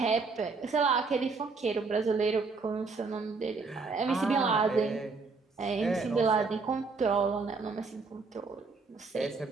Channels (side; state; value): left; quieter; 4.3 dB